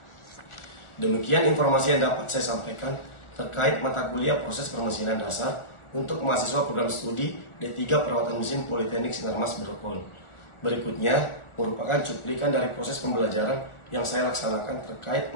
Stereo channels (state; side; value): late; right; 1.4 ms